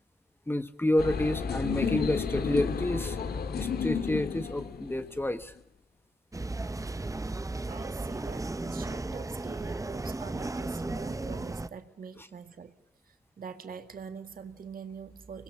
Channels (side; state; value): both; normal; correlation 0.84